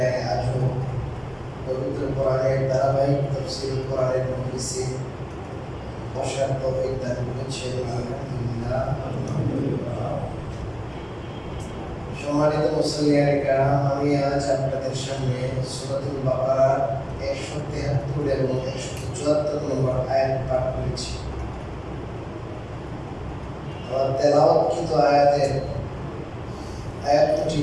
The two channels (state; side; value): identical; both; correlation 1.00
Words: আজও পবিত্র কোরআনের ধারাবাহিক তাফসীর কোরআনের মজলিসে বসার তৌফিক দান করেছেন। আলহামদুলিল্লাহ। সম্মানিত মুসলিয়ানে কেরাম, আমি আজ আপনাদের সামনে সূরাতুল বাকারার 173 এবং 174 নম্বর আয়াত পাঠ করেছি। আমার তেলাওয়াতকৃত আয়াতের